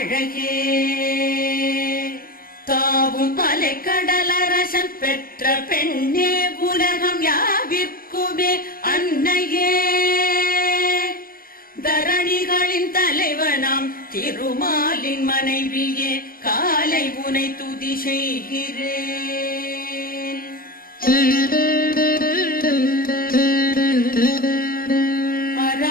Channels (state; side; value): late; right; 0.42 ms